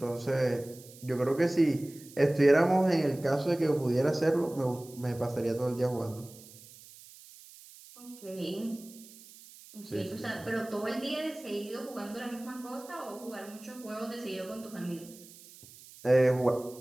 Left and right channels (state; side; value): noise; right; hiss, 20 dB below the sound